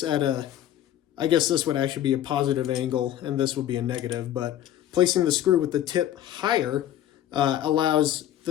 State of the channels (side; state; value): right; quieter; 11.9 dB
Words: at a, I guess this would actually be a positive angle and this would be a negative, but placing the screw with the tip higher allows